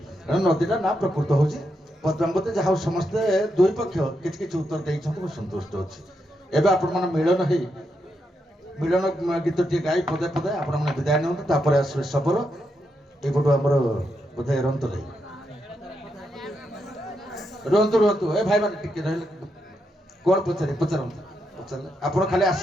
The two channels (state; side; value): normal; both; correlation 0.82